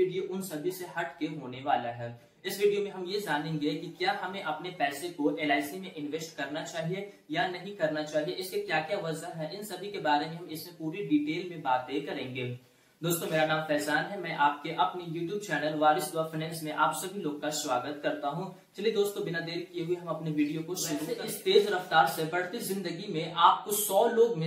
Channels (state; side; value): identical; both; correlation 1.00